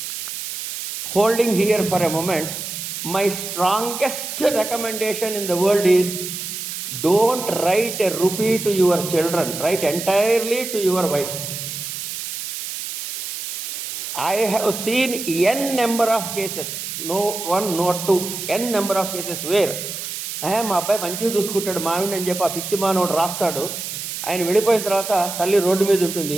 Holding here for a moment, my strongest recommendation in the world is don't write a rupee to your children, write entirely to your wife. I have seen n number of cases, no one, not two, n number of cases where మా అబ్బాయి మంచిగా చూసుకుంటాడు మావిడిని అని చెప్పి ఆ పిచ్చి మానవుడు రాస్తాడు. ఆయన వెళ్ళిపోయిన తర్వాత తల్లి రోడ్డు మీద ఉంటుంది,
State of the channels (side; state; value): right; noise; hiss, 6 dB below the sound